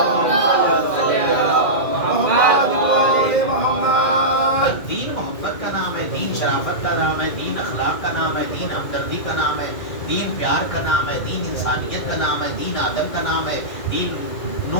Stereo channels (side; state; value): right; late; 2.0 ms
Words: دین محبت کا نام ہے، دین شرافت کا نام ہے، دین اخلاق کا نام ہے، دین ہمدردی کا نام ہے، دین پیار کا نام ہے، دین انسانیت کا نام ہے، دین آدم کا نام ہے، دین